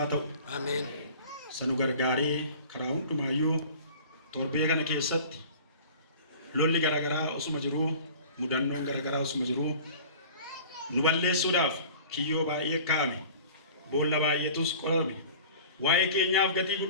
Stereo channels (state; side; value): inverted; both; correlation -0.43